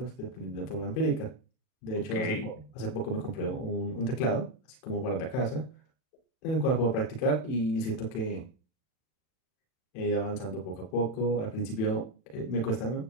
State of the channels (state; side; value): late; right; 39 ms